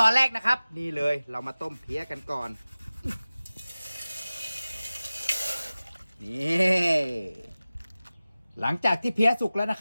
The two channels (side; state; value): both; inverted; correlation -0.97